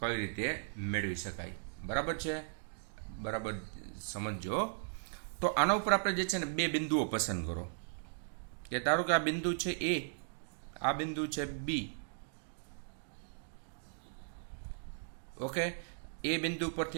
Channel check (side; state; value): left; silent; digital silence